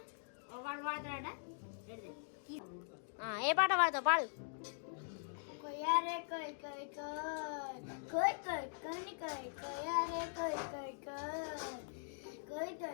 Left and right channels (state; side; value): silent; right; digital silence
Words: వాడు పాడతాడ. ఏ పాట పాడతావు? పాడు. కొయ్యారే కొయ్ కొయ్ కొయ్ కొయ్ కొన్ని కొయ్ కొయ్యారే కొయ్ కొయ్ కొయ్